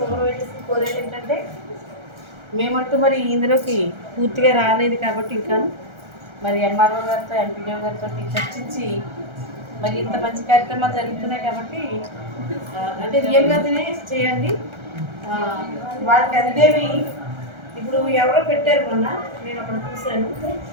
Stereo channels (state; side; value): late; left; 1.3 ms